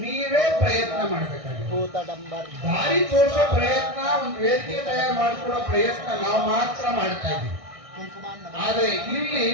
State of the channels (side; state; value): left; late; 1.6 ms